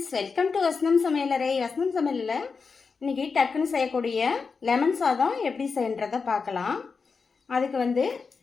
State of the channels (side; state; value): right; quieter; 5.0 dB